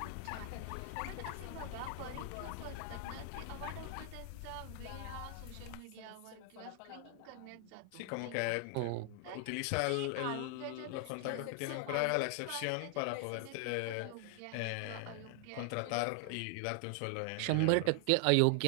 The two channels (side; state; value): both; different; correlation 0.00